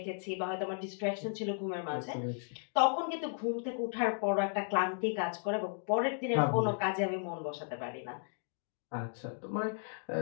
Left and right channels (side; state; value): right; silent; 54 dB below the other